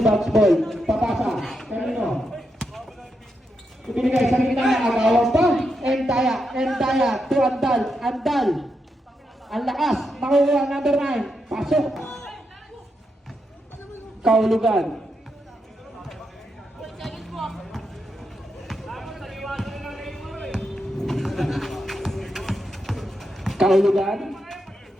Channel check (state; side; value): normal; both; correlation 0.84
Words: bounce ball. Papasa. Kanino? Ibinigay sa kita. Agawang pa. Endaya. Endaya. To Andal. Andal. Ang lakas. Makuha number 9. Pasok. Kaulugan. Kaulugan.